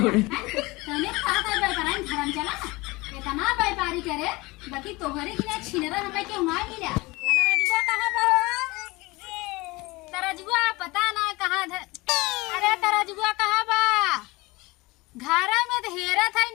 तने कहा था व्यापारी धर्म चला इतना व्यापारी करे बाकी तोहरे की ना छिनरा हमें क्यों ना मिला तरजुआ कहां बा तरजुआ पता ना कहां अरे तरजुआ कहां बा घर में तो हेरा था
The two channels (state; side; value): quieter; right; 22.6 dB